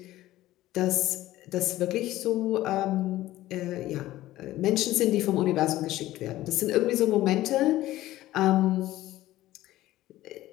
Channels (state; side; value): quieter; right; 15.6 dB